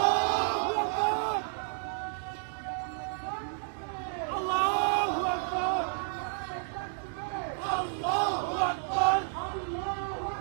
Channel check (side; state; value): left; silent; digital silence